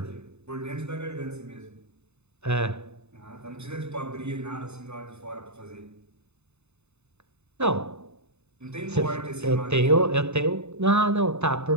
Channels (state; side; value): late; left; 0.81 ms